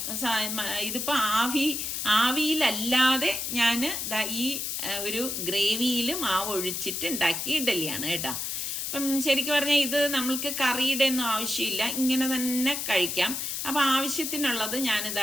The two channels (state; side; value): noise; left; hiss, 3 dB below the sound